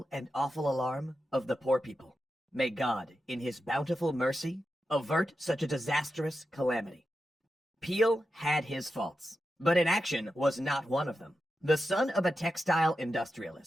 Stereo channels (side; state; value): both; normal; correlation 0.90